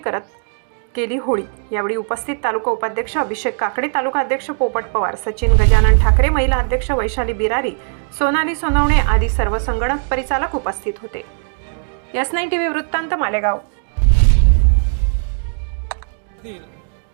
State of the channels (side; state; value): left; silent; 62 dB below the other